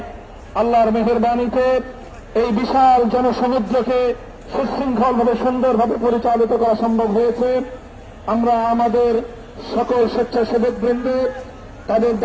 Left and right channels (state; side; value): identical; both; correlation 1.00